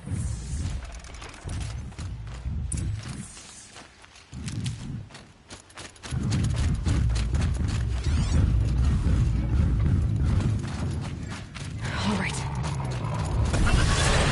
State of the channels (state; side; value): identical; both; correlation 1.00